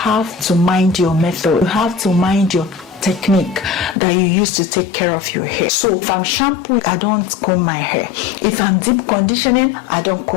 to mind your method. You have to mind your technique that you use to take care of your hair. So if I'm shampooing, I don't comb my hair. If I'm deep conditioning, I don't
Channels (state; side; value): drops out; right; at 4.0 s